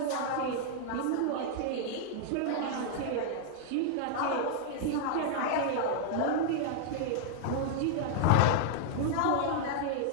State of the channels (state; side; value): different; both; correlation -0.01